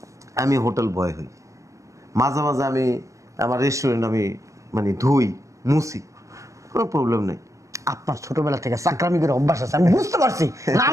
আমি হোটেল বয় হই, মাঝে মাঝে আমি আমার রেস্টুরেন্ট আমি মানে ধুই মুছি, কোনো প্রবলেম নেই। আপনার ছোটবেলা থেকে চাকরামি করে অভ্যাস আছে, আমি বুঝতে পারছি। না,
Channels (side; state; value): left; late; 0.15 ms